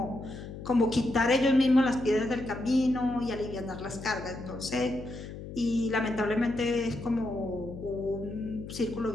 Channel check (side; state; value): left; noise; hum, 11 dB below the sound